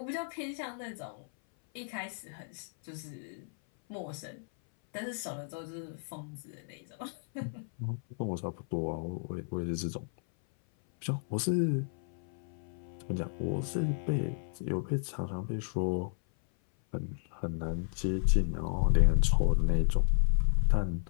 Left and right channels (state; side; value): silent; right; 56 dB below the other